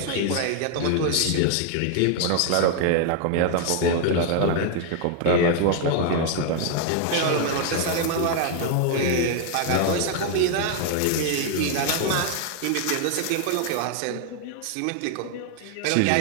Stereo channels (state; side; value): different; both; correlation 0.00